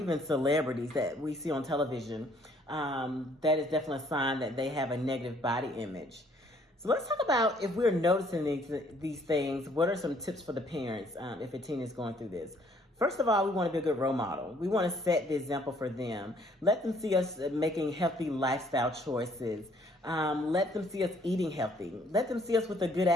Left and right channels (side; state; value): both; normal; correlation 0.63